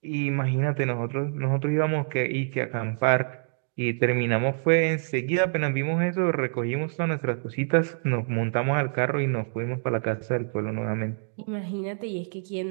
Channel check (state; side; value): silent; left; digital silence